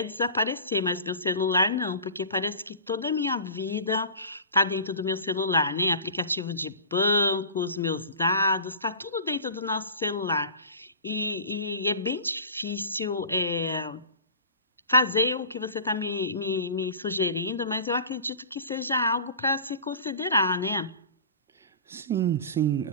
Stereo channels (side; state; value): both; inverted; correlation -0.38